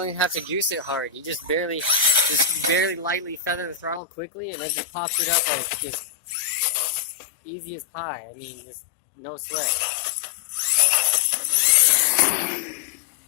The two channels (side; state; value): right; drops out; at 4.0 s